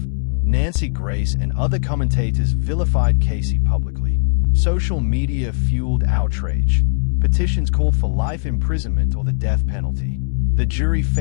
Nancy Grace and other commentators vilified Caylee publicly. Social media fueled outrage. Petitions called for life imprisonment or the death penalty. The jury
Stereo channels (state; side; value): silent; right; digital silence